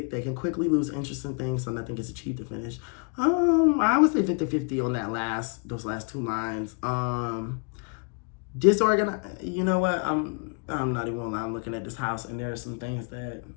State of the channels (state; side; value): quieter; right; 37.8 dB